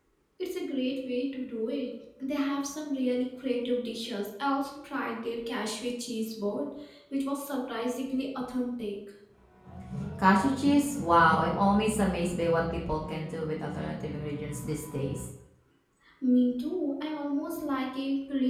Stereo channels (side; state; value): both; identical; correlation 1.00